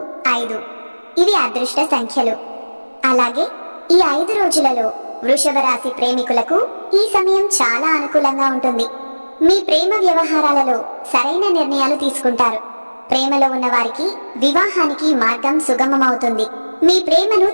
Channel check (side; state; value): both; inverted; correlation -1.00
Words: 5 ఇవి అదృష్ట సంఖ్యలు. అలాగే ఈ 5 రోజులలో వృషభ రాశి ప్రేమికులకు ఈ సమయం చాలా అనుకూలంగా ఉంటుంది. మీ ప్రేమ వ్యవహారాలలో సరైన నిర్ణయాలు తీసుకుంటారు. ప్రేమలో ఉన్న వారికి వివాహానికి మార్గం సుగమమవుతుంది. మీ ప్రేమను